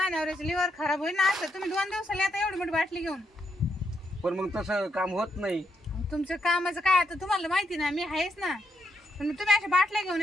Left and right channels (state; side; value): normal; both; correlation 0.80